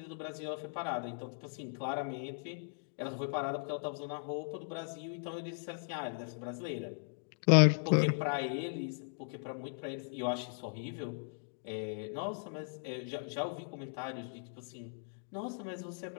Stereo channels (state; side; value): silent; right; digital silence